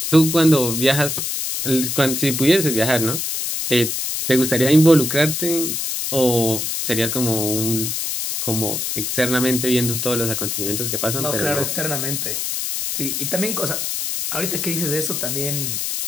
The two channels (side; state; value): left; noise; hiss, 2 dB below the sound